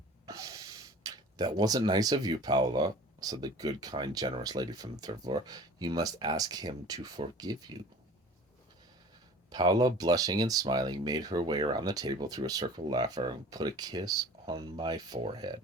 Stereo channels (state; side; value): normal; both; correlation 0.43